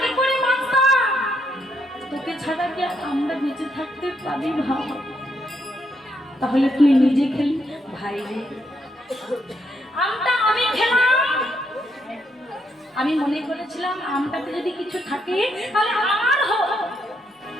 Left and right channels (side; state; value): both; normal; correlation 0.76